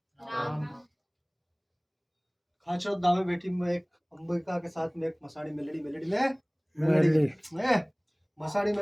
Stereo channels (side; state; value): both; identical; correlation 1.00